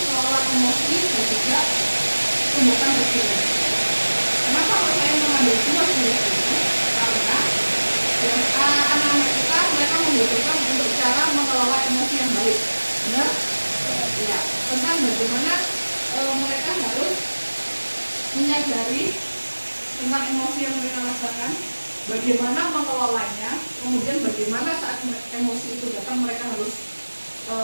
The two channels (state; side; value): inverted; both; correlation -1.00